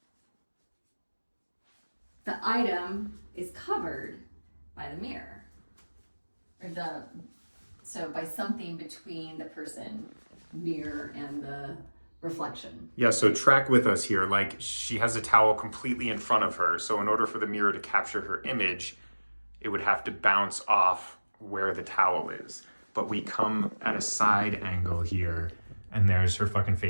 the item is covered by the mirror? So by something between the person, mirror, and the reflection. Yeah, so track with us here. Like, she has a towel completely in front of her. So in order for the mirror to capture her image, it would have to bounce off where the towel is. But we come at a side angle here, and there's her fucking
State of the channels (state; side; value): inverted; both; correlation -1.00